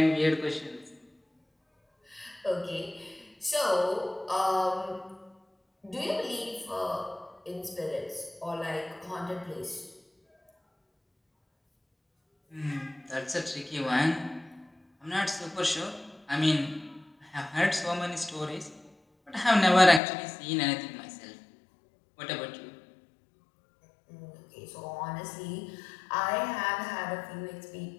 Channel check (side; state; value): right; drops out; at 20.0 s